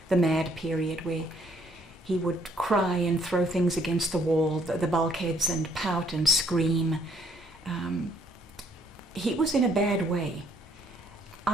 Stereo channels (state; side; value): normal; both; correlation 0.66